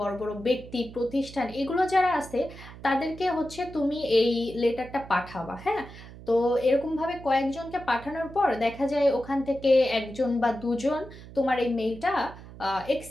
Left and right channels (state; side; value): noise; right; hum, 16 dB below the sound